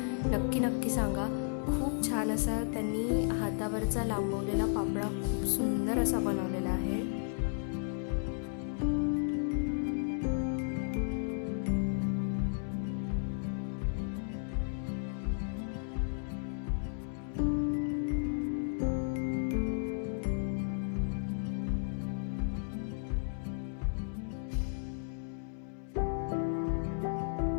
नक्की सांगा. खूप छान असा त्यांनी हातावरचा लांबवलेला पापडा खूप सुंदर असा बनवलेला आहे.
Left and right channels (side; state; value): right; silent; 55 dB below the other